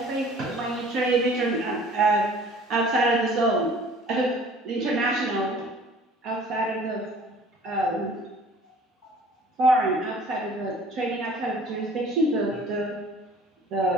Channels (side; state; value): both; normal; correlation 0.50